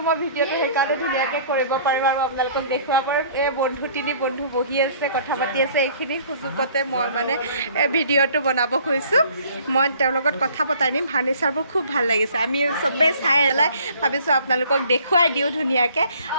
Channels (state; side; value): inverted; both; correlation -0.54